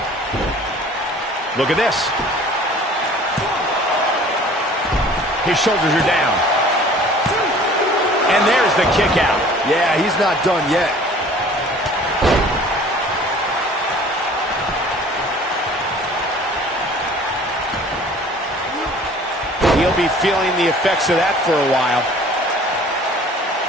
Look at this. His shoulders are down. And there's the kick out. Yeah, he's not done yet. He'll be feeling the effects of that for a while.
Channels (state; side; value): normal; both; correlation 0.49